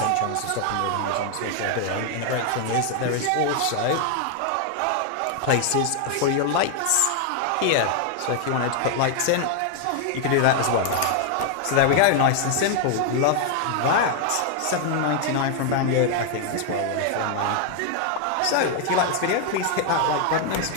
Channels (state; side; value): different; both; correlation 0.00